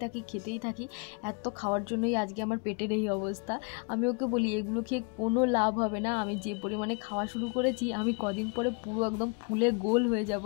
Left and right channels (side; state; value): right; quieter; 33.0 dB